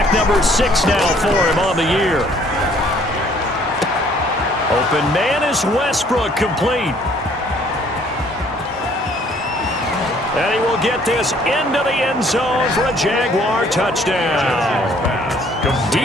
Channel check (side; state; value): both; normal; correlation 0.60